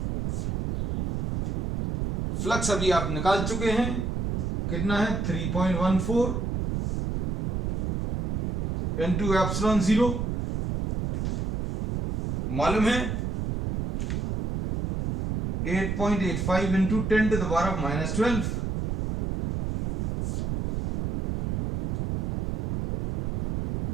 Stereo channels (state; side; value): noise; right; rumble, 2 dB below the sound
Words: Flux अभी आप निकाल चुके हैं, कितना है 3.14 इंटू एप्सिलॉन 0, मालूम है 8.85 into 10 to the power of -12,